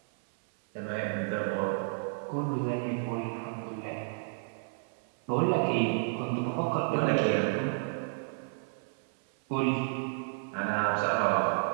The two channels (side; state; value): left; silent; 57 dB below the other